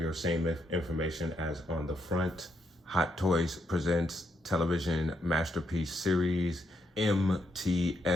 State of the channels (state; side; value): normal; both; correlation 0.78